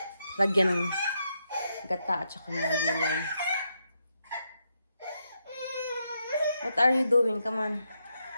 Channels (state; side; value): inverted; both; correlation -0.81